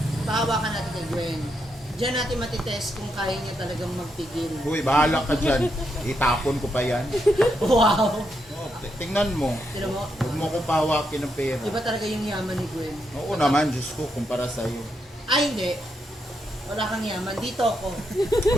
pahawakan natin kay Gwen. Diyan natin matitest kung kaya niya talagang magpigil. Uy, bahala ka dyan. Itapon ko pa yan. Wow! Oh, tingnan mo. Tignan mo, Huwag mo kong pahawakin ng pera. iba talaga yung yaman ni Gwen. Oo naman, Diyos ko, kumpara sa'yo. Ay, hindi. Wala kang yaman. Dito ako.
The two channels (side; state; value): both; normal; correlation 0.81